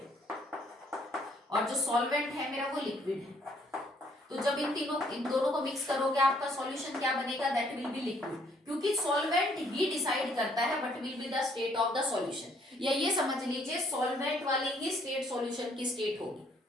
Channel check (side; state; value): both; normal; correlation 0.65